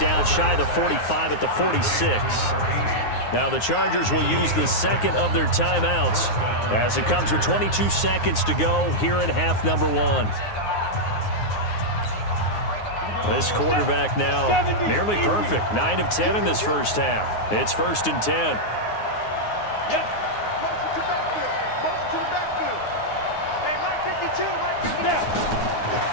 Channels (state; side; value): late; right; 9.6 ms